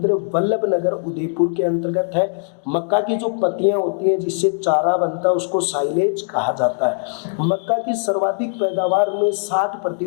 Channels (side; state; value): right; silent; 66 dB below the other